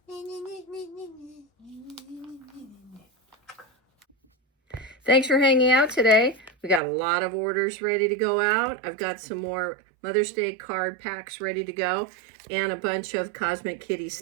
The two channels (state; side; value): drops out; left; at 6.8 s